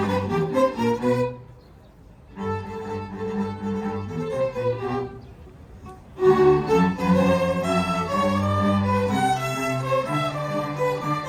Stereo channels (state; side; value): identical; both; correlation 1.00